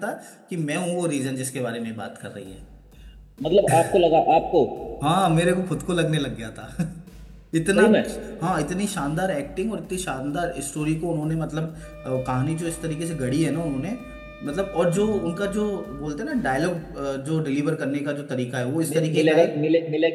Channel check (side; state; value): both; identical; correlation 1.00